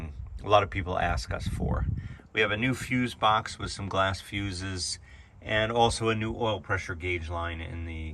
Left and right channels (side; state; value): both; identical; correlation 1.00